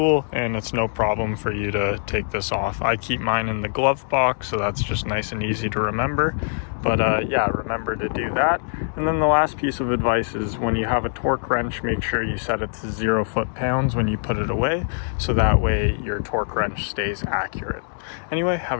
and it's no problem for you to take this off. I keep mine in the glove box, so that's just nice and easy to remember. But yeah, remember to do that. And then the last piece of advice is when you have a torque wrench, make sure you set it to 0 foot-pounds when you put it away, so that way your torque wrench stays accurate. Anyway,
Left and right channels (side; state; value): right; silent; digital silence